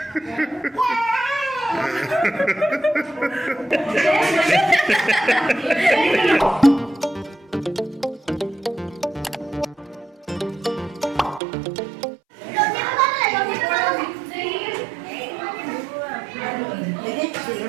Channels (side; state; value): left; drops out; at 11.4 s